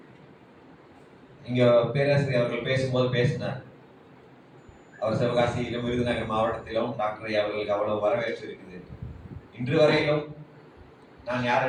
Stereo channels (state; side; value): identical; both; correlation 1.00